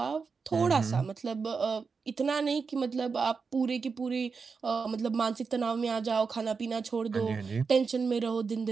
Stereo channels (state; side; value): quieter; left; 5.1 dB